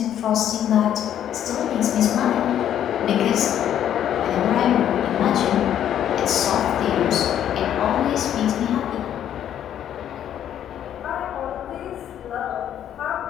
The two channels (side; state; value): right; quieter; 10.4 dB